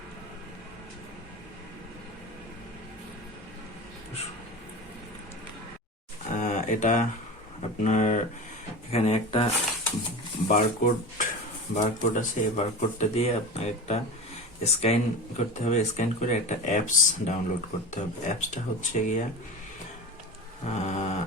এটা আপনার এখানে একটা বারকোড আছে। এই বারকোডটা দিয়ে আপনার একটা স্ক্যান করতে হবে। স্ক্যান করে একটা অ্যাপস ডাউনলোড করতে হবে। অ্যাপসটা হচ্ছে গিয়া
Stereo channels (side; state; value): both; normal; correlation 0.30